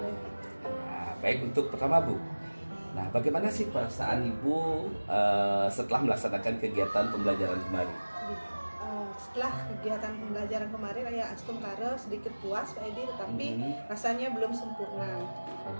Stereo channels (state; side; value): inverted; both; correlation -1.00